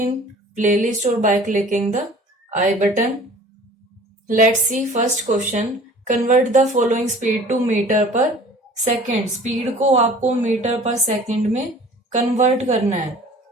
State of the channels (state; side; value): normal; both; correlation 0.47